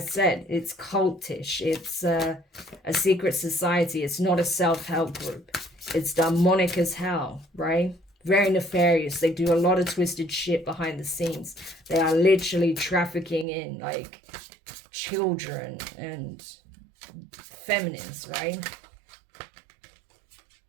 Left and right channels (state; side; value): drops out; left; at 13.5 s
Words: it's cultish. It's a secret society. It's not a self-help group. It's demonic as hell, right? Very nefarious. They do a lot of twisted shit behind the scenes. They are literally trafficking in, like, children and feminines, right?